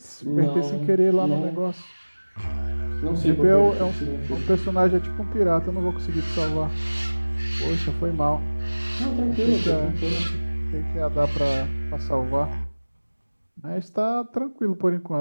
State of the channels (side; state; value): both; inverted; correlation -1.00